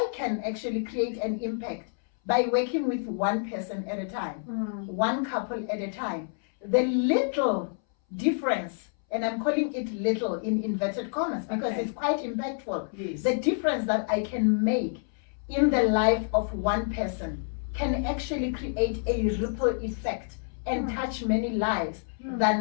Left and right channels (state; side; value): silent; right; 59 dB below the other